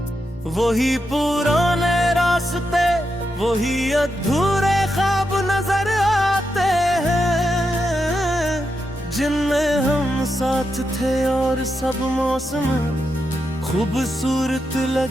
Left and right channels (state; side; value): normal; both; correlation 0.85